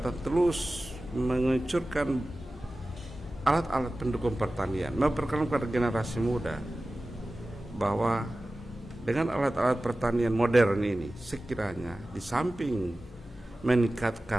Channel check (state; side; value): normal; both; correlation 0.96